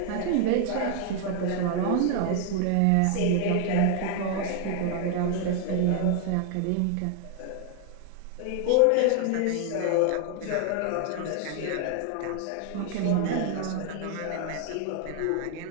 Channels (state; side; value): different; both; correlation 0.00